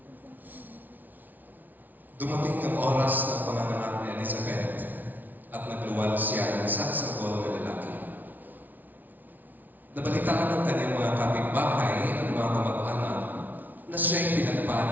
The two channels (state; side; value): late; left; 0.082 ms